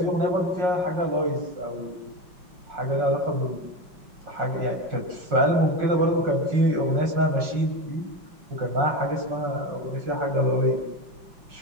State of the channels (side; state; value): left; late; 5.5 ms